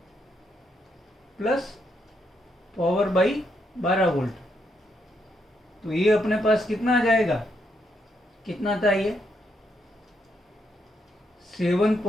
plus power by 12 volt. तो ये अपने पास कितना आ जाएगा, कितना था ये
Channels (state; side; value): normal; both; correlation 0.78